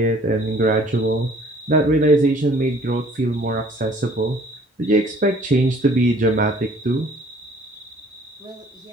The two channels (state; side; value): normal; both; correlation 0.55